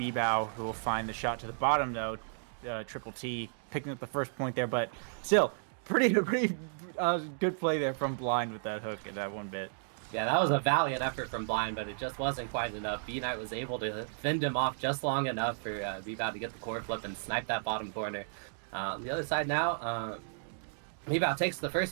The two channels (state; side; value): silent; left; digital silence